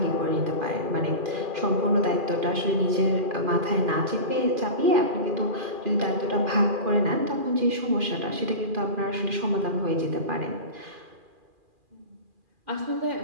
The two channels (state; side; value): late; left; 2.4 ms